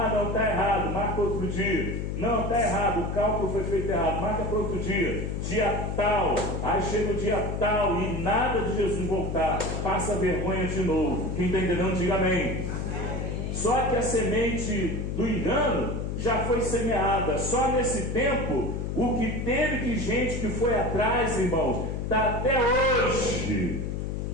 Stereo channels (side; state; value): left; noise; hum, 3 dB below the sound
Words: não, está errado, marca outro dia. Não, está errado, o cálculo foi feito errado, marca para outro dia. Dia tal, aí chega o dia tal e nada de Jesus voltar. Passa vergonha de novo. Quem está entendendo, diga amém. Só que a semente do engano já foi semeada. Só nesse tempo, o que teve de gente que foi atrás, irmãos, está até hoje